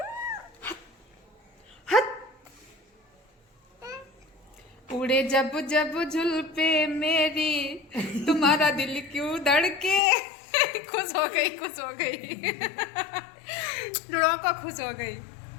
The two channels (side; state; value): right; drops out; at 10.0 s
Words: उड़े जब जब झुलपे मेरी, तुम्हारा दिल क्यों धड़के। खुश हो गई, खुश हो गई। लड़ाका खुश हो गई।